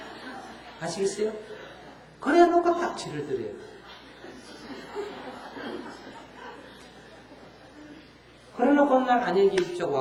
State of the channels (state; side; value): identical; both; correlation 1.00